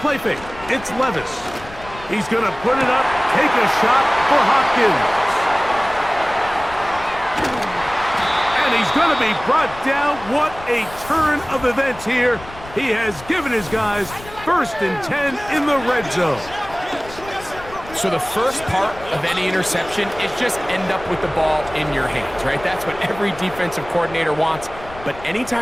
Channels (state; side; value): noise; left; rumble, 17 dB below the sound